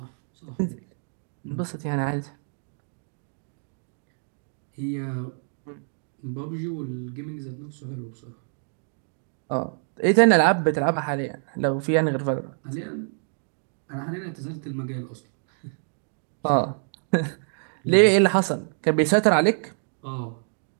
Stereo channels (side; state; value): left; silent; 58 dB below the other